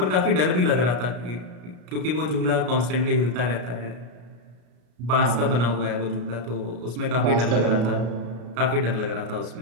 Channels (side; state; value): left; late; 33 ms